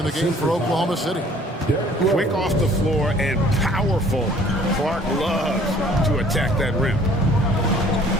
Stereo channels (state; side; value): normal; both; correlation 0.54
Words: the game for Oklahoma City. Quick off the floor and powerful. Clark loves to attack that rim.